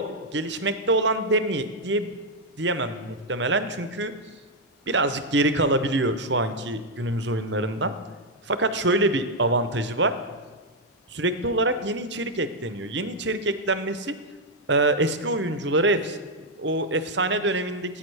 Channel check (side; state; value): both; normal; correlation 0.00